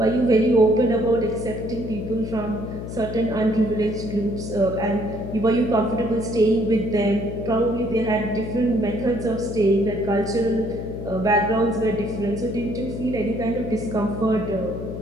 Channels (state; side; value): noise; left; hum, 8 dB below the sound